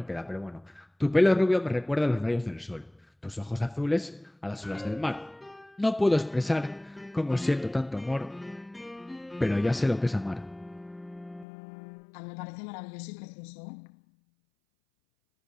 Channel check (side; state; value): right; drops out; at 11.5 s